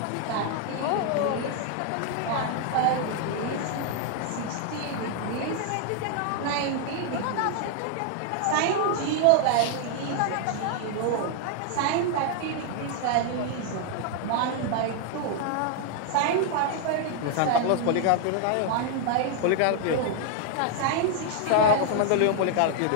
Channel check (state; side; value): different; both; correlation 0.00